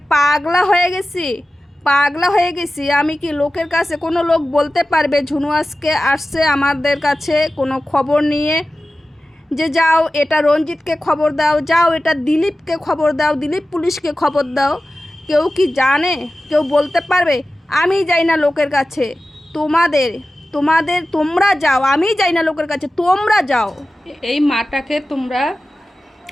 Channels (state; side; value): normal; both; correlation 0.95